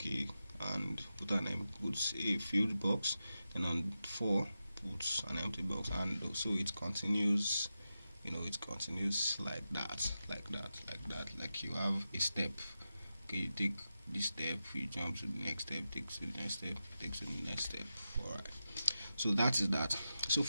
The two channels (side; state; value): both; inverted; correlation -0.90